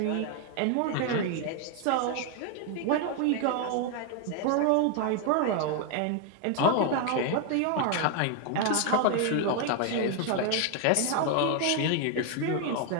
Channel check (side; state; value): both; different; correlation 0.01